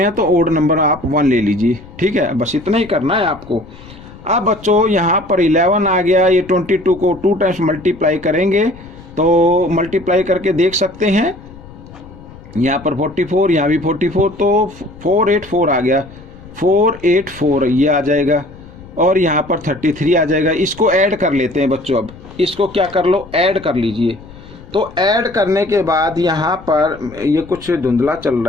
है तो ओड नंबर आप 1 ले लीजिए, ठीक है। बस इतना ही करना है आपको। अब बच्चों यहाँ पर 11 आ गया, ये 22 को 2 टाइम्स मल्टीप्लाई करेंगे तो मल्टीप्लाई करके देख सकते हैं, यहाँ पर 44, यहाँ भी 44, तो 484 आ गया, 484 ये आ जाएगा। और यहाँ पर 33 आ जाएगा। इसको ऐड कर लेते हैं बच्चों। अब इसको क्या कर लो, ऐड कर लीजिए। तो ऐड करने के बाद यहाँ पर ये कुछ धुंधला चल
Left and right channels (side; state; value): left; noise; rumble, 19 dB below the sound